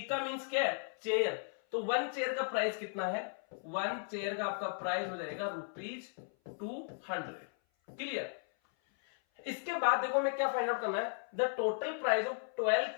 का मीन्स क्या है, चेयर। तो 1 चेयर का प्राइस कितना है, 1 चेयर का आपका प्राइस हो जाएगा ₹200। क्लियर? इसके बाद देखो हमें क्या फाइंड आउट करना है, the total price of 12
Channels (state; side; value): silent; right; 54 dB below the other